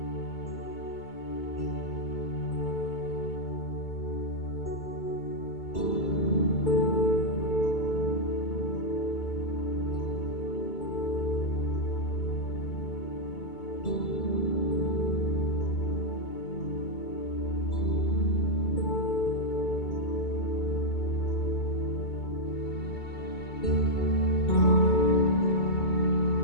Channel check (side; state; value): right; late; 2.2 ms